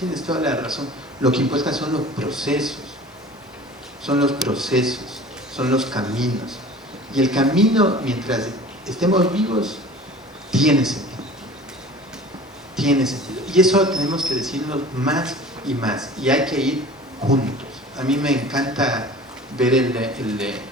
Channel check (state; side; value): normal; both; correlation 0.42